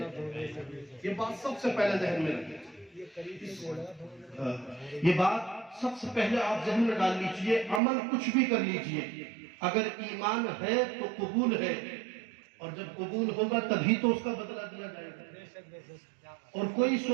یہ بات سب سے پہلے ذہن میں رکھیں، یہ بات سب سے پہلے آپ ذہن میں ڈال لیجئے۔ عمل کچھ بھی کر لیجئے، اگر ایمان ہے تو قبول ہے، اور جب قبول ہوگا تبھی تو اس کا بدلہ دیا جائے گا۔ اور کوئی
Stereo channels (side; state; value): left; drops out; at 7.8 s